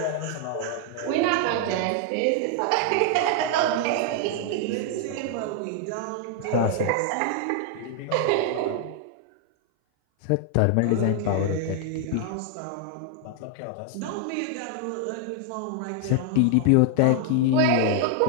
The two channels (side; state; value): both; different; correlation 0.00